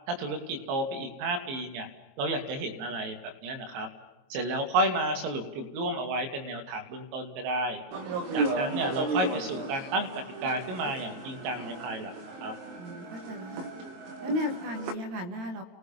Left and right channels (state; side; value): late; left; 22 ms